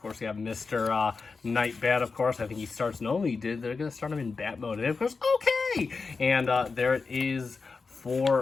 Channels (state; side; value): quieter; right; 4.5 dB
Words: course, we have Mr. Night Bat, of course. I think he starts, no, he did. They're going to start him in bat mode. And, of course, okay! And there it is